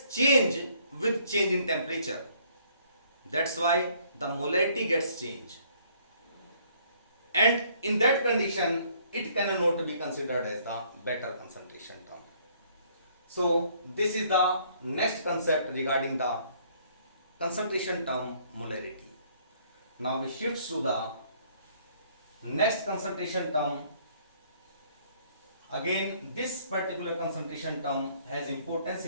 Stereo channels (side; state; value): both; inverted; correlation -0.63